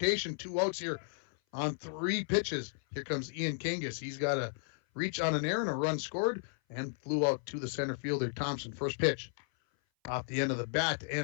2 outs here on 3 pitches. Here comes Ian Kangas. He's got a reach on an error and a run scored and flew out to the center fielder, Thompson. First pitch off the end of the bat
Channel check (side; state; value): right; silent; 55 dB below the other